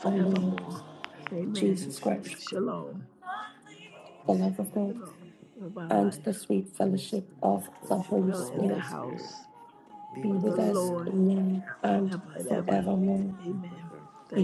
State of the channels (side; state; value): both; identical; correlation 1.00